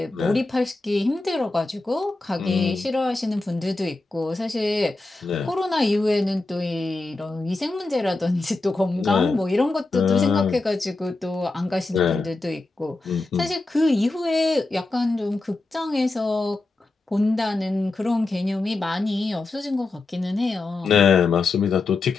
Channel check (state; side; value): quieter; right; 3.3 dB